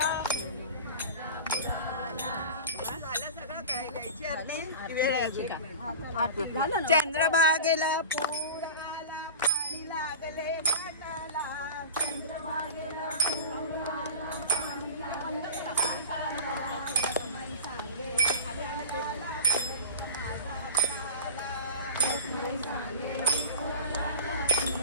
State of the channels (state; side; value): inverted; both; correlation -0.32